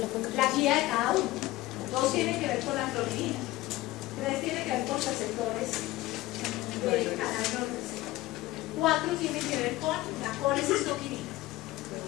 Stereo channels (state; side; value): quieter; right; 17.8 dB